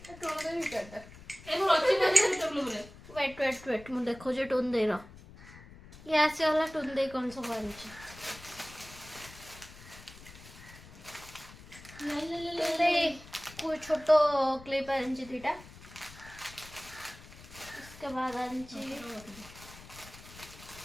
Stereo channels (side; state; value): left; noise; rumble, 18 dB below the sound